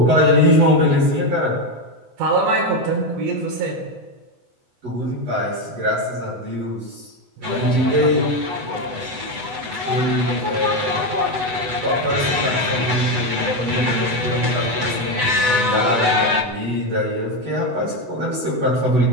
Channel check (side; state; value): left; late; 8.1 ms